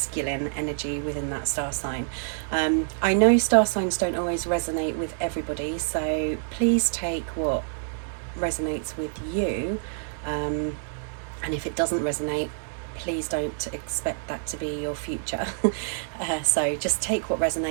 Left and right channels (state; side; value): silent; left; digital silence